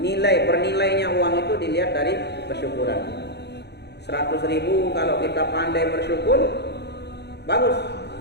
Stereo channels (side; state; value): right; late; 0.49 ms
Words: bernilainya uang itu dilihat dari kesyukuran. 100.000 kalau kita pandai bersyukur, bagus.